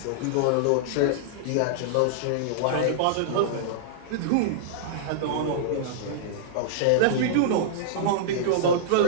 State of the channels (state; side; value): different; both; correlation -0.02